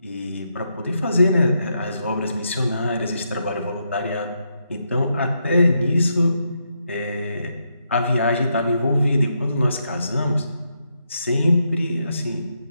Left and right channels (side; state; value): both; inverted; correlation -0.81